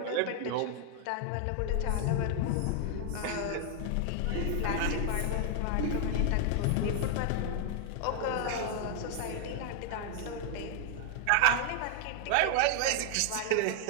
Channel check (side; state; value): both; different; correlation 0.00